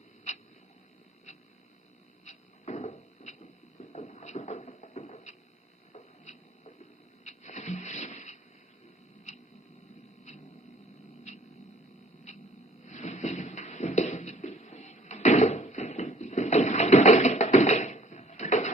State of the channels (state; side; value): normal; both; correlation 0.56